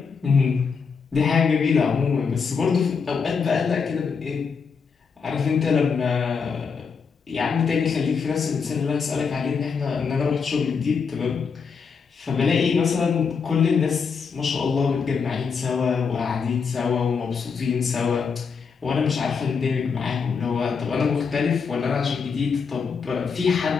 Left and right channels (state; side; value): quieter; right; 5.7 dB